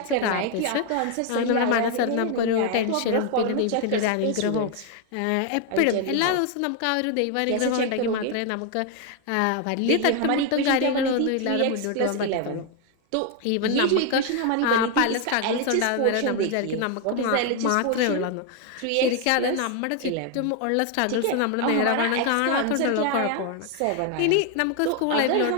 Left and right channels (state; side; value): different; both; correlation 0.01